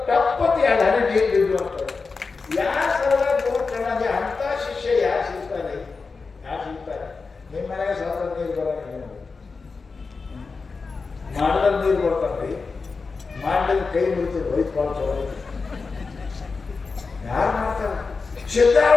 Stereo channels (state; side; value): quieter; right; 4.5 dB